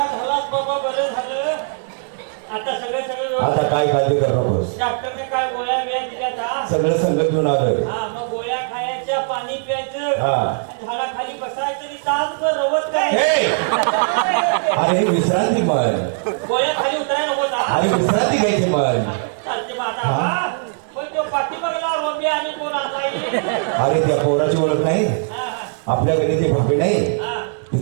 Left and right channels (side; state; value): left; silent; 66 dB below the other